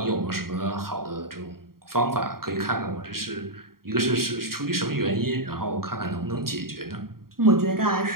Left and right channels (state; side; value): late; left; 0.93 ms